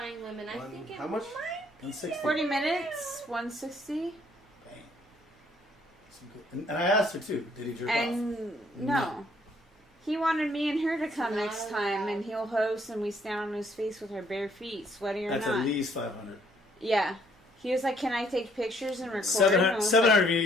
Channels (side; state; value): both; normal; correlation 0.65